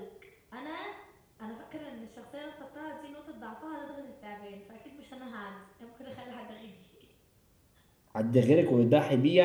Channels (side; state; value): both; identical; correlation 1.00